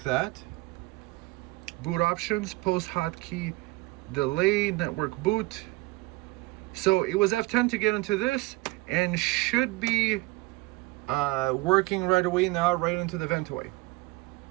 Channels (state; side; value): quieter; left; 21.8 dB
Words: that. Boot options, post hotkey, delay, network boot. So it was F10 to get into this, and should be working right away now, right into the Ventoy.